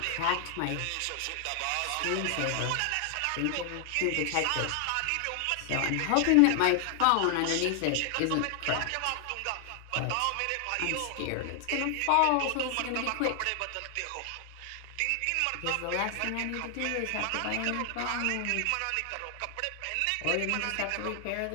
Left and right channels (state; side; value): different; both; correlation 0.00